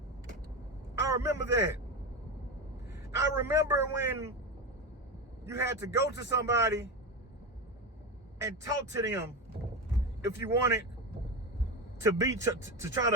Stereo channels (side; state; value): both; normal; correlation 0.19